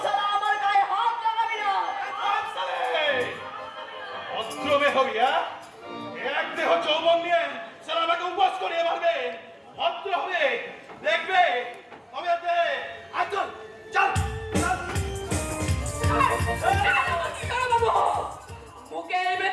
সারা আমার গায়ে হাত লাগাবি না। অস্ত্রবে হবি, হ্যাঁ? এক দেহ যৌবন নিয়ে সারা আমাকে উপবাস করিয়ে মারবে। ভদ্র হবে, দেখবে তবে চল চল ছোট বাবু, মুখের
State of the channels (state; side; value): identical; both; correlation 1.00